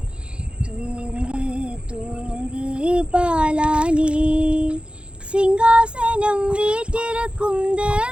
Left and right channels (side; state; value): left; late; 0.056 ms